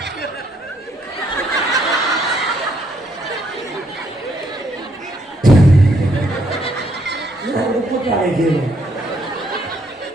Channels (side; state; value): both; normal; correlation 0.71